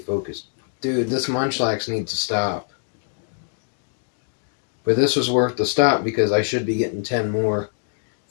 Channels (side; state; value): right; silent; 63 dB below the other